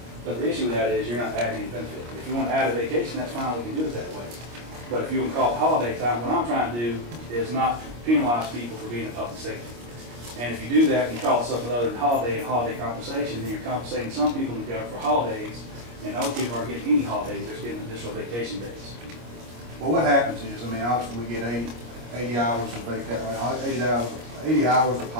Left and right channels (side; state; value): left; late; 25 ms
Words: But the issue with that is you're not adding any benefit. If you want to add a vacation, that's fine, we can do it that way. But if you want to call it holiday time, what I'm trying to do is not penalize people for being in public safety. And if you do that, and you call it something other than holiday and holiday compensation, then you're compensating some people in the government for holidays, and other people aren't getting any holidays, they're just getting additional vacation days. Well, what happens is, I mean, obviously we get 80 hours of vacation, 80 hours of